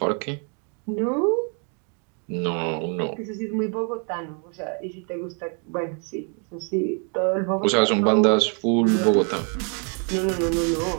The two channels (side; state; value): left; quieter; 39.7 dB